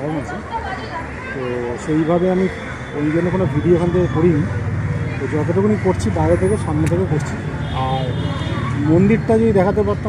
আছে। তো সেইভাবে আমি ওই জন্য কোনো ভিডিও এখান থেকে করিনি। তো যতটুকুনি করছি বাইরে থেকে, সামনে থেকে করছি। আর মন্দিরটা যদি দেখাতে পারতাম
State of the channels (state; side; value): identical; both; correlation 1.00